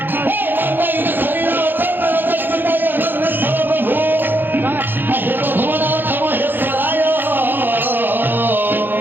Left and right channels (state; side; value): late; left; 0.094 ms